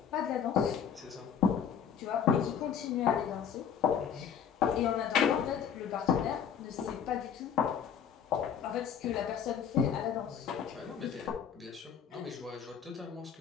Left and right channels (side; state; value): right; quieter; 7.9 dB